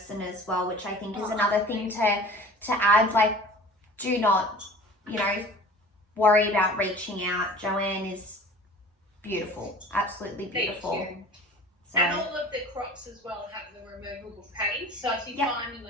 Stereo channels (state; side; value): normal; both; correlation 0.43